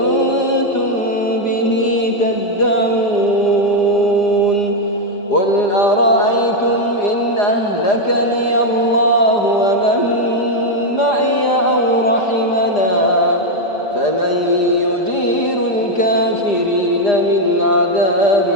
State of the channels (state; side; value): late; right; 4.9 ms